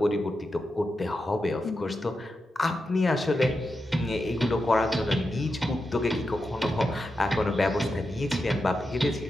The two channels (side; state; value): both; normal; correlation 0.88